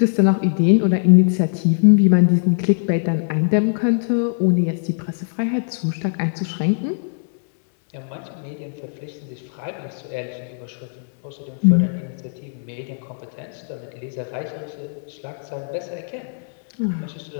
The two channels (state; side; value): silent; right; digital silence